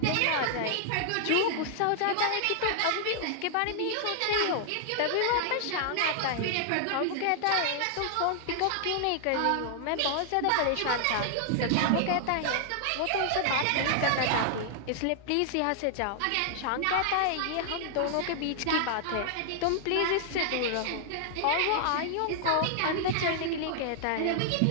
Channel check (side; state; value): both; different; correlation -0.01